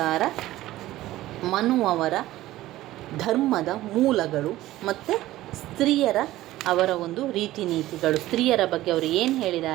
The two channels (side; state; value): left; quieter; 15.8 dB